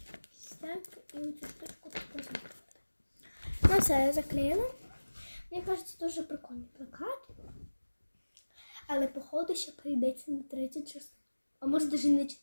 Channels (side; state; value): both; inverted; correlation -1.00